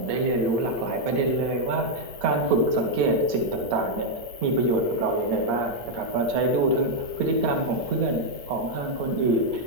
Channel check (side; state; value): left; late; 8.1 ms